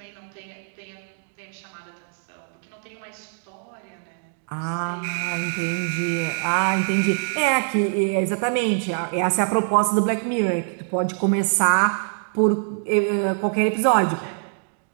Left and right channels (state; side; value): silent; left; digital silence